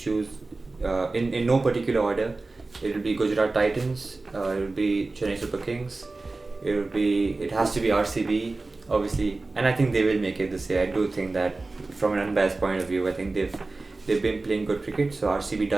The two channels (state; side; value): quieter; left; 3.4 dB